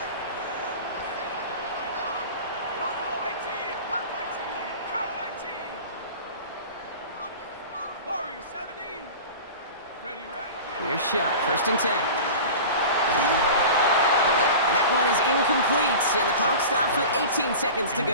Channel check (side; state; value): both; inverted; correlation -0.35